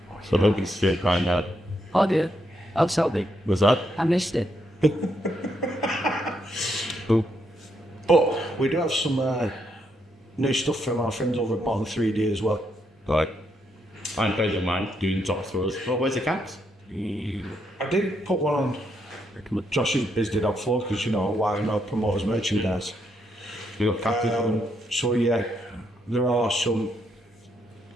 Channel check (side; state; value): both; normal; correlation 0.78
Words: So don't be straight crying out. Oh dear, I'll tell me. What's that? I missed it. Who? But we do have some new stuff from our friends over at Bottom 3D as well. Right. I'm friends of mine doing top throws. Well, where's the cats? I did put one on Josh's Biz Did Dog Floor because, you know, why not promote his merchandise. We got cats. So yeah, there are some